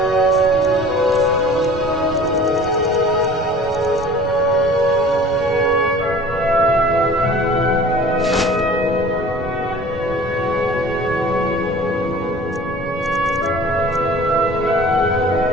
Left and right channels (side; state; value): both; normal; correlation 0.45